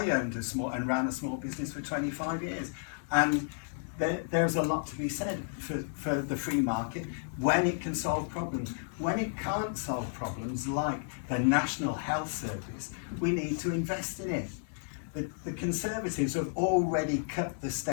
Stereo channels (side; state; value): right; silent; 56 dB below the other